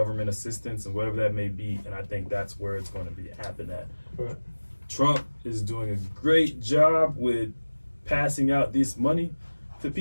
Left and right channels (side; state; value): both; inverted; correlation -1.00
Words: assistance and whatever that may be. And I think that's where it's going to be happen at. Right. Trump is doing a great job with passing out this money to